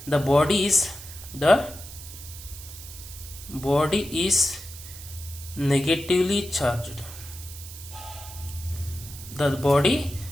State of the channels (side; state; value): right; noise; hiss, 14 dB below the sound